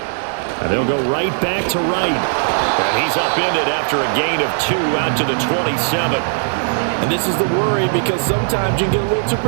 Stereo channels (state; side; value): silent; left; digital silence